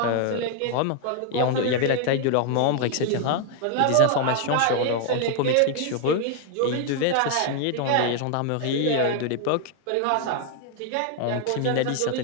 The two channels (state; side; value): different; both; correlation 0.00